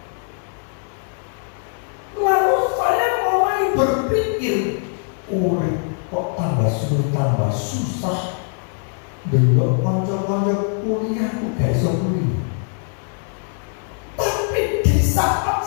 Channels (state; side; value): silent; right; 56 dB below the other